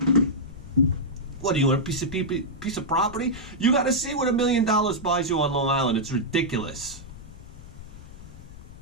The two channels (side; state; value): left; noise; rumble, 16 dB below the sound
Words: What, do you want a piece of property? You got to see what $1 million buys you on Long Island. It's ridiculous.